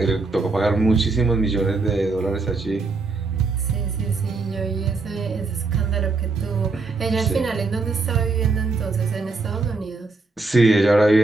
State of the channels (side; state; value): left; quieter; 3.8 dB